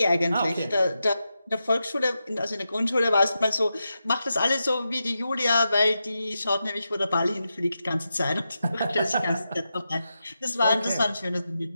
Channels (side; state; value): both; inverted; correlation -0.89